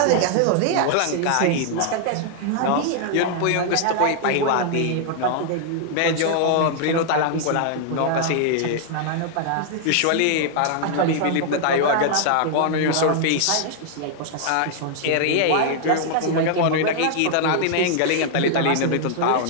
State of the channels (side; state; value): both; different; correlation -0.01